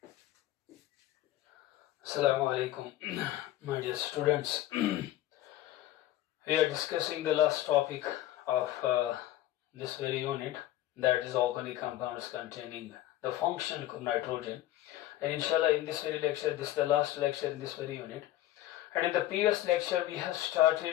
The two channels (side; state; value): right; quieter; 14.3 dB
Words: alaikum, my dear students. We are discussing the last topic of this very unit, that is organic compounds containing the functional group nitrogen. And inshallah, in this very lecture, this is the last lecture in this very unit. And in the previous lecture, we have